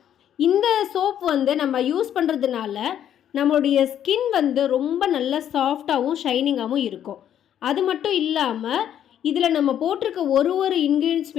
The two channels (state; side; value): quieter; right; 10.2 dB